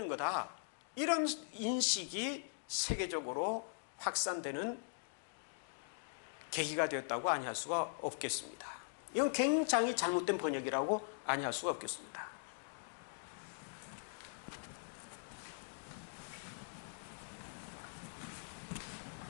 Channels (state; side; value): silent; right; digital silence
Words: 거다, 이런 인식이 세계적으로 확산되는 계기가 되었다고 아니할 수가 없겠습니다. 이건 굉장히 잘못된 번역이라고 아니할 수가 없겠습니다.